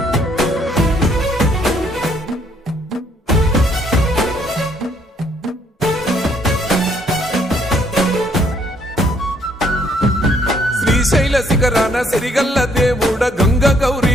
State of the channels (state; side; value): normal; both; correlation 0.67